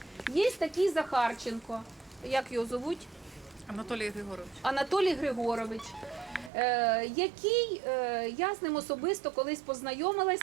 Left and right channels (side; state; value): left; drops out; at 6.5 s